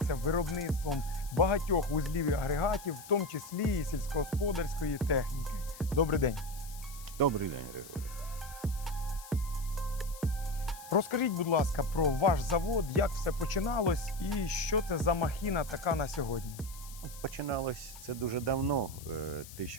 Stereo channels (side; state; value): left; noise; hiss, 16 dB below the sound